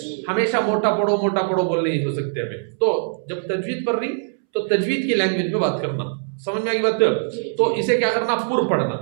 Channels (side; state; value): left; silent; 64 dB below the other